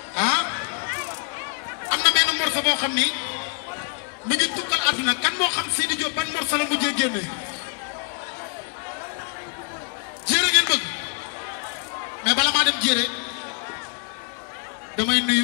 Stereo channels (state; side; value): quieter; right; 38.4 dB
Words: ah am na benn morceau boo xam ni mu ngi tukkal àdduna kan moo xam Sidi Diop ban morceau la mujjee génne jéere ngeen bëgg mais bala maa dem jéere damay